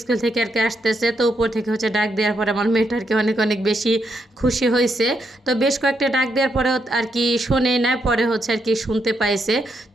স্কুল থেকে আর কি আসতেছে, তো উপর থেকে ডাক দেওয়ার পরে আমার মেয়েটা আর কি অনেক অনেক বেশি খুশি হয়েছে। তো বেশ কয়েকটা ডাক দেওয়ার পরে আর কি শোনে না, পরে আর কি শুনতে পাইছে।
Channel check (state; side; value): normal; both; correlation 0.79